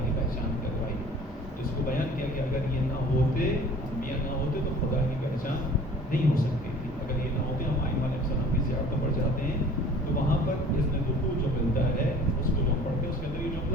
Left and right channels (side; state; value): both; normal; correlation 0.47